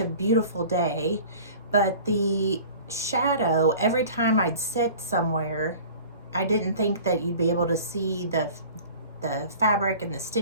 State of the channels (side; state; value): both; inverted; correlation -0.43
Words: beautiful day, but the shadow, every time I'd sit somewhere, I didn't think that you'd be able to see the fabric and the